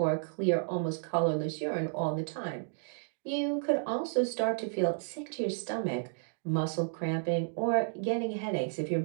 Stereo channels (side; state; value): left; silent; digital silence